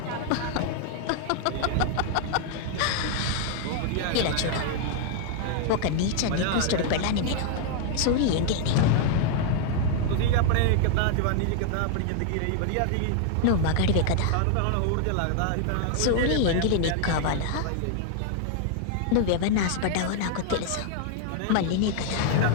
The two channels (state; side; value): different; both; correlation 0.00